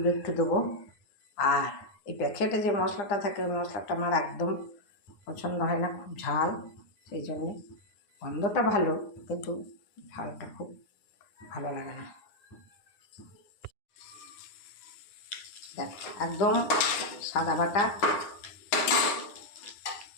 একটু দেবো। আর এই প্যাকেটে যে মশলাটা থাকে, ওই মশলাটা আমার একদম পছন্দ হয় না, খুব ঝাল। সেই জন্যে গন্ধটা ভালো, কিন্তু ঝালটা খুব ভালো লাগে না। দেখ, একদম সাদা বাটা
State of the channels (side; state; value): right; late; 9.6 ms